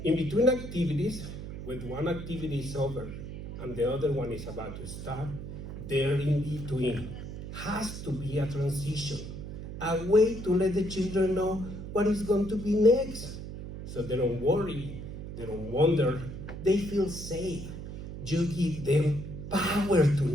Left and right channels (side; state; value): right; noise; hum, 9 dB below the sound